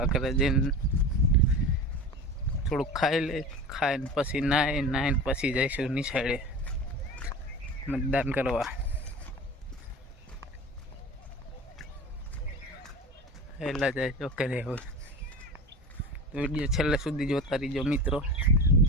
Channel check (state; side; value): normal; both; correlation 0.31